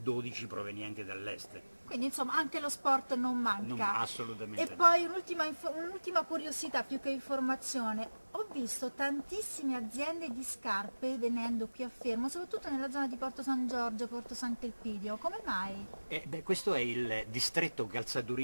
12 provenienti dall'est. Quindi insomma anche lo sport non manca. Non, assolutamente. E poi un'ultima curiosità più che informazione, ho visto tantissime aziende di scarpe venendo qui a Fermo, soprattutto nella zona di Porto San Giorgio, Porto Sant'Elpidio, come mai? Questo è il distretto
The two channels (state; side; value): inverted; both; correlation -1.00